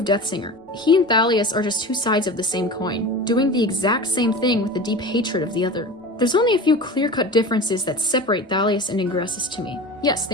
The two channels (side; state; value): both; normal; correlation 0.32